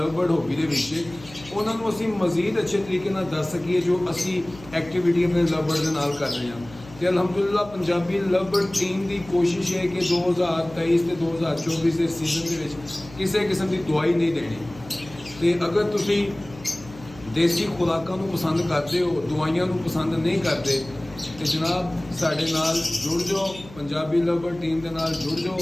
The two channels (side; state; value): left; noise; hum, 19 dB below the sound